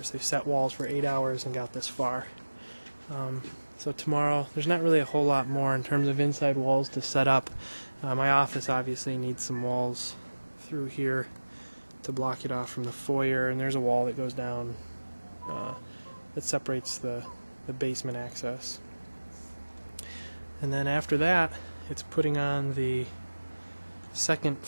They set walls for 8 hours and got this far. So tomorrow, there's not really a whole lot more in terms of inside walls to set up. My office obviously needs some walls through here to block it off from the foyer, and there's a wall that goes down that separates the basement access. And then after that, it's putting on the 2nd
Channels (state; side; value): inverted; both; correlation -1.00